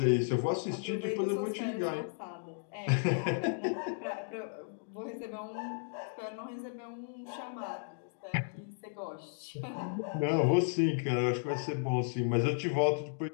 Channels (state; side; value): silent; right; digital silence